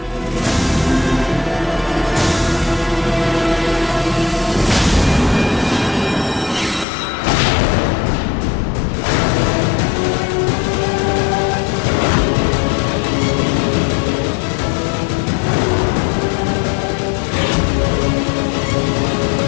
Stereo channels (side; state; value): right; drops out; at 6.9 s